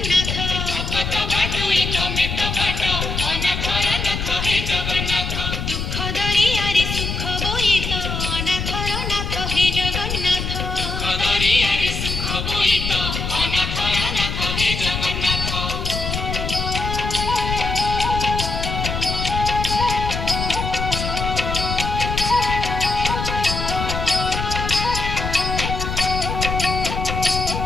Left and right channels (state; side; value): noise; left; rumble, 3 dB below the sound